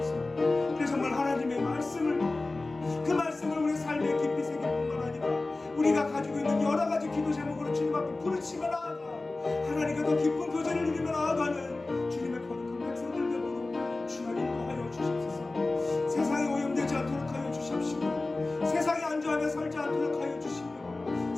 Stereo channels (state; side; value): quieter; right; 3.2 dB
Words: 그래서 정말 하나님의 말씀을, 그 말씀을 우리 삶에 깊이 새길 뿐만 아니라 우리가 가지고 있는 여러 가지 기도 제목으로 주님 앞에 부르치며 나아가 하나님과 더 깊은 교제를 누리며 나아가는 주님의 거룩한 백성들 되도록 주여 인도하여 주시옵소서. 세상에 오염되지 않도록 하여 주시옵시고 세상에 안주하며 살지 않도록 하여 주시며